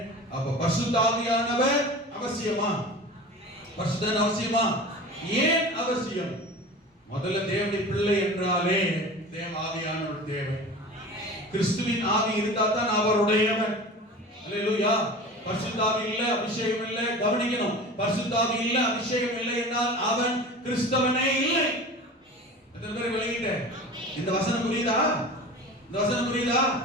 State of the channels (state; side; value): normal; both; correlation 0.36